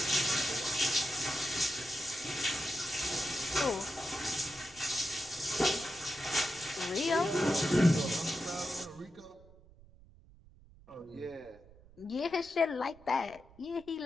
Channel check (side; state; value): right; noise; rumble, 24 dB below the sound